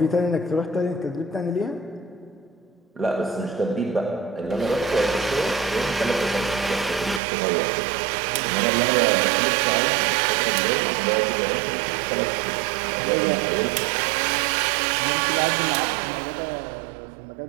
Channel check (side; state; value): left; drops out; at 7.2 s